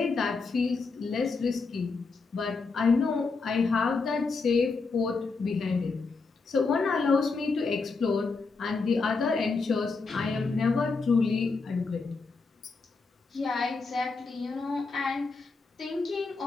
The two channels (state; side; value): quieter; right; 4.3 dB